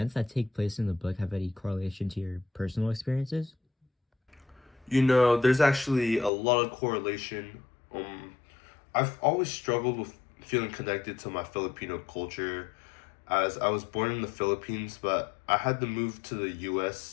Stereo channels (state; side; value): drops out; right; at 6.3 s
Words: that take place in the book have any correlation to your personal experiences? You know, there's actually a lot of correlation. I've always struggled with feeling connected to my Filipino culture, as I was born in the Philippines, but I had to move to the